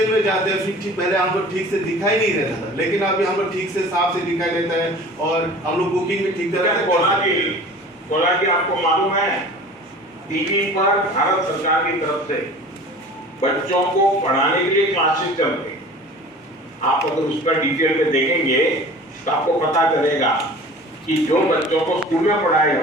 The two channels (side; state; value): both; normal; correlation 0.42